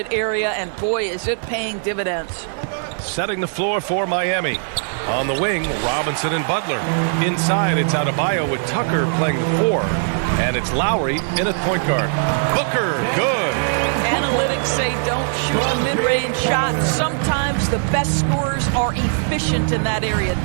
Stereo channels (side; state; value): left; silent; 58 dB below the other